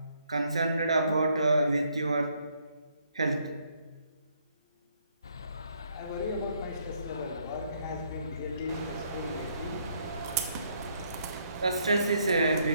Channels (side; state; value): both; inverted; correlation -0.70